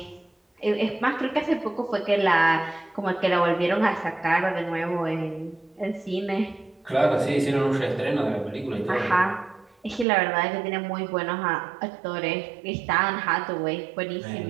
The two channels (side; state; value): left; drops out; at 10.1 s